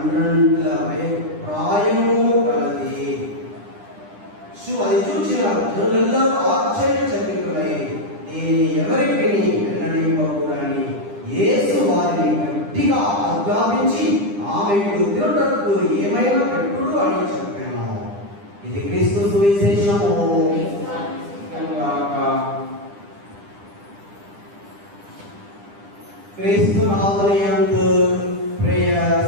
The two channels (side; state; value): left; late; 10 ms